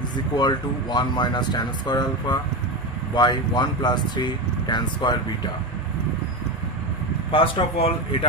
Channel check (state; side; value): normal; both; correlation 0.18